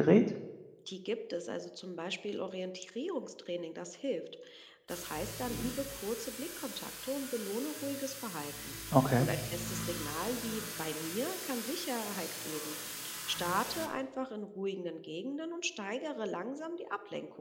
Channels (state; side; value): identical; both; correlation 1.00